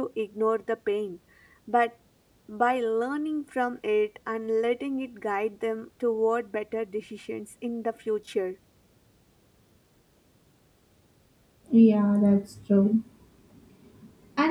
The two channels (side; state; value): both; identical; correlation 1.00